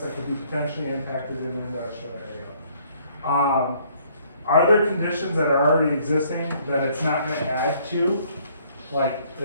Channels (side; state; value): both; inverted; correlation -0.63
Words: that could be potentially impacted in the industrial area. Are there conditions that are already existing that it's not gonna add to? Like,